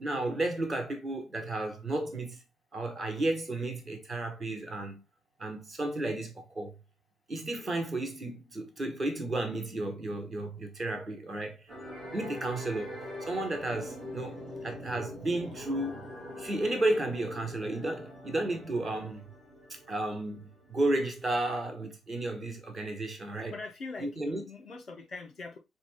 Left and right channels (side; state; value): both; normal; correlation 0.84